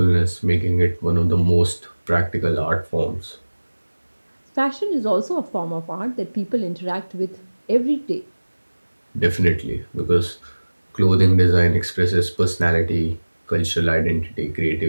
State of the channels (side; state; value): both; inverted; correlation -1.00